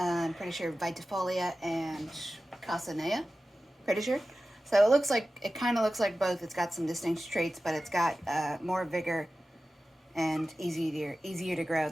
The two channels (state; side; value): normal; both; correlation 0.95